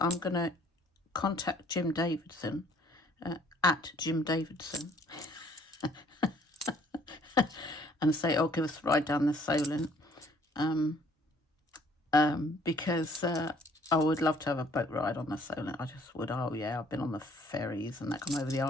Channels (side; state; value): both; normal; correlation 0.60